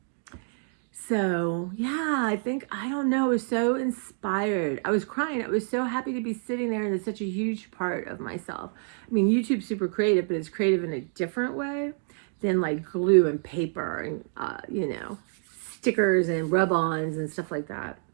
So, yeah, I think, I don't know, I was so inspired. I was crying. I was so happy to be sitting there, and it's such a huge part of myself. I mean, YouTube's super creative, but it's creative in a different way than like glue and paper and, you know, stickers and rub-ons and stuff like that.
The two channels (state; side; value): silent; left; 60 dB below the other